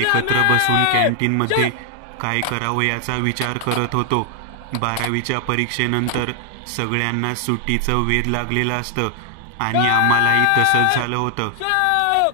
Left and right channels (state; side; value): different; both; correlation 0.00